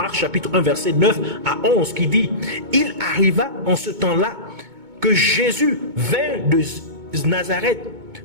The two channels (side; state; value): left; late; 2.2 ms